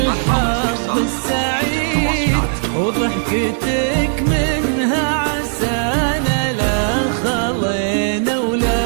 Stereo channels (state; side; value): silent; left; 59 dB below the other